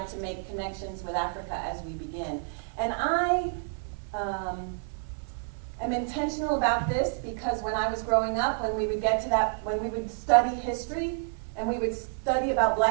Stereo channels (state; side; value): silent; left; 59 dB below the other